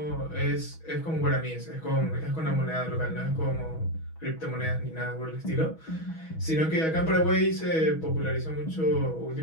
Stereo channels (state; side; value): late; right; 6.2 ms